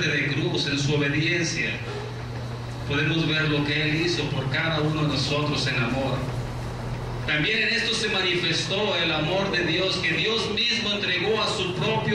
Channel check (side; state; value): both; identical; correlation 1.00